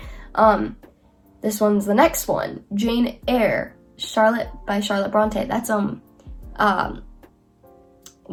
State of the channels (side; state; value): both; identical; correlation 1.00